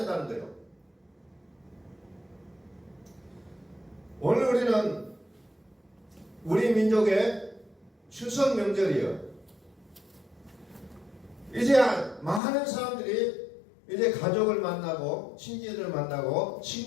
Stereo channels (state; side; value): drops out; right; at 12.4 s